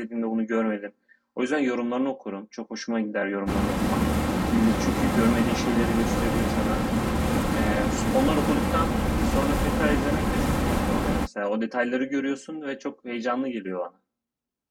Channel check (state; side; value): identical; both; correlation 1.00